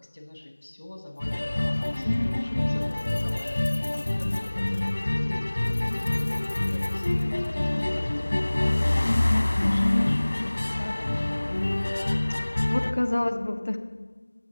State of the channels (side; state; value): both; inverted; correlation -1.00